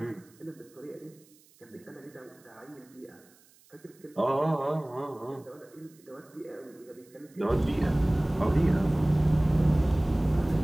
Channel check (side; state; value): right; noise; hiss, 29 dB below the sound